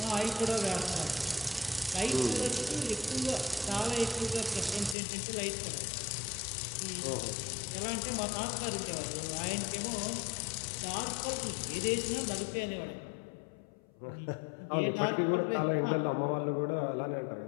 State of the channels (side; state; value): right; drops out; at 5.0 s